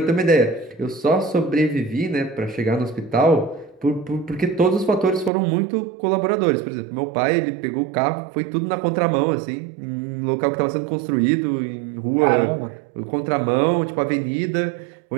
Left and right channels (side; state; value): left; drops out; at 5.3 s